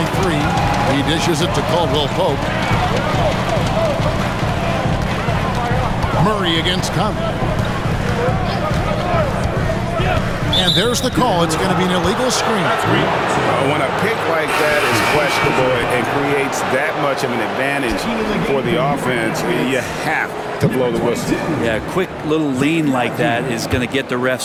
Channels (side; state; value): both; identical; correlation 1.00